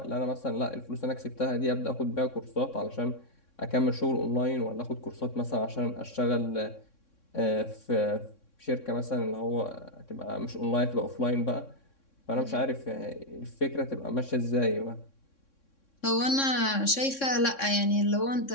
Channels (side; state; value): right; late; 3.6 ms